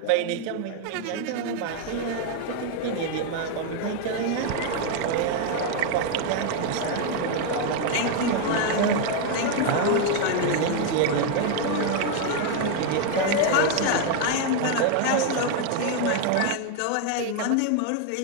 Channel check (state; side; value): different; both; correlation 0.01